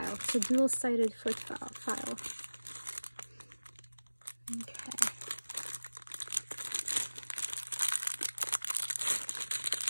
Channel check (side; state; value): both; inverted; correlation -1.00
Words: It's a dual-sided foot file. Okay.